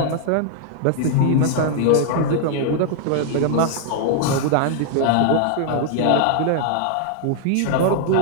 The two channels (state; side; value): different; both; correlation 0.00